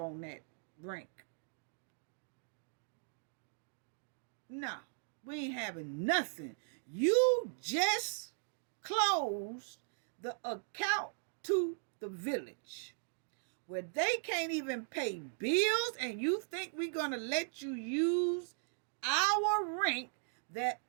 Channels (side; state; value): left; silent; digital silence